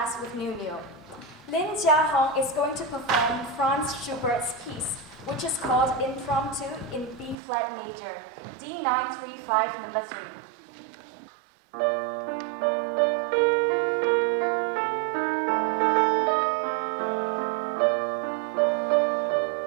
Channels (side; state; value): left; drops out; at 7.4 s